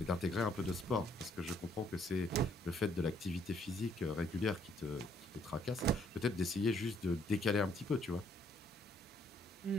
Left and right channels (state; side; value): normal; both; correlation 0.67